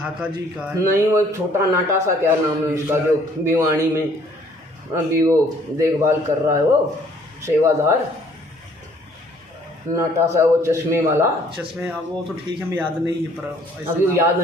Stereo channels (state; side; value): normal; both; correlation 0.60